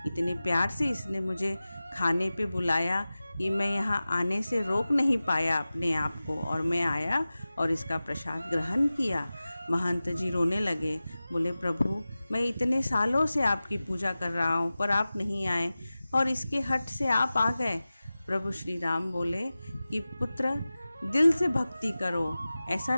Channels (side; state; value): both; inverted; correlation -0.96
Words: इतने प्यार से इसने मुझे खाने पे बुलाया कि मैं यहाँ आने से रोक नहीं पाया अपने आप को, और मैं आया और इसका प्रसाद ग्रहण किया। महंत जी रोने लगे। बोले, प्रभु, मैं इतने सालों से आपकी पूजा कर रहा हूँ पर आप नहीं आए और इसके हट से आप आ गए। प्रभु श्री राम बोले कि पुत्र, दिल से भक्ति करो, ऐसा